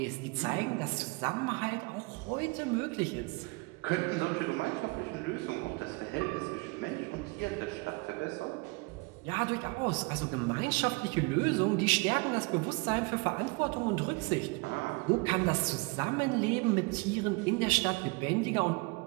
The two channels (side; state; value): left; quieter; 28.7 dB